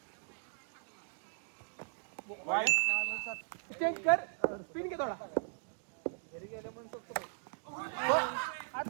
चेंज कर. स्पिन घे थोडा. घरी गेल्या म्हणून शकतो.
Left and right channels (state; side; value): silent; left; digital silence